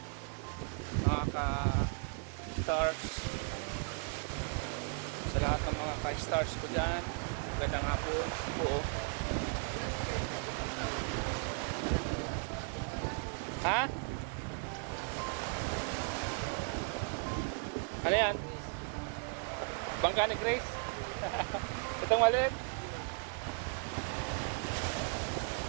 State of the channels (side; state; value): left; quieter; 37.6 dB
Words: Mga ka-stars. Sa lahat ng mga ka-stars ko dyan. Magandang hapon po. Ha? Ano yan? Bangka ni Grace? Itong maliit?